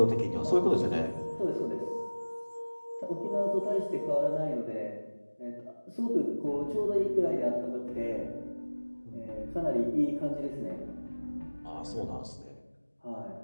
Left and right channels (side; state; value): both; inverted; correlation -1.00